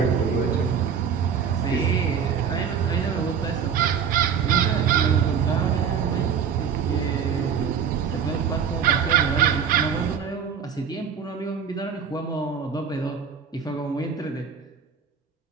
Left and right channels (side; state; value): left; quieter; 7.1 dB